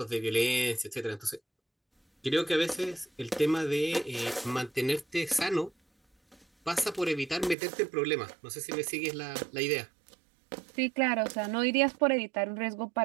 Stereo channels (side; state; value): left; drops out; at 7.6 s